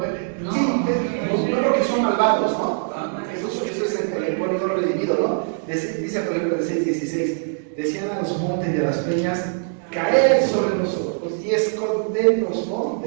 sí, no porque son malvados, ¿no? Eso es el pueblo no redimido, ¿no? Dice, por ejemplo, el 6:16, decían a los montes y a las peñas: caed sobre nosotros y escondernos, ¿no?,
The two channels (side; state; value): left; silent; digital silence